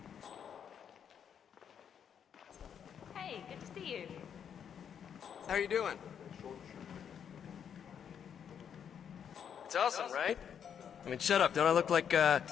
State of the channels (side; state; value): right; quieter; 8.1 dB